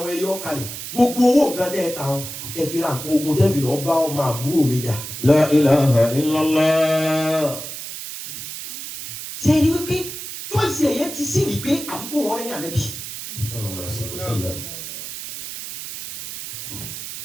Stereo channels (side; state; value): right; noise; hiss, 9 dB below the sound